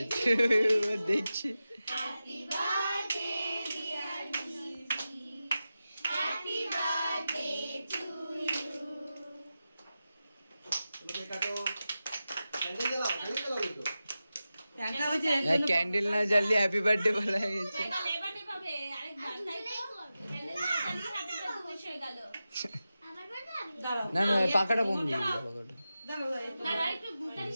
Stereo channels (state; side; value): inverted; both; correlation -0.93